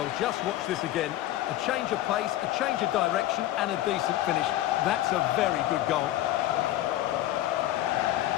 just watch this again. A change of pace, a change of direction, and a decent finish. That's a very good goal.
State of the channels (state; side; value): quieter; right; 14.3 dB